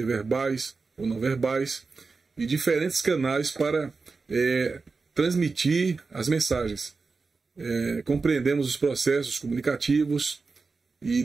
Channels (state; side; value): quieter; left; 4.3 dB